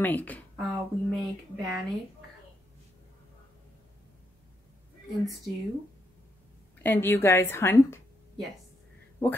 We make bannock and stew. And do you guys hunt? Yes. What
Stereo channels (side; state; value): both; normal; correlation 0.79